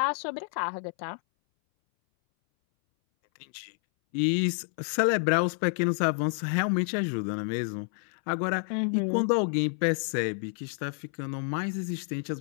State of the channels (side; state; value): right; silent; 59 dB below the other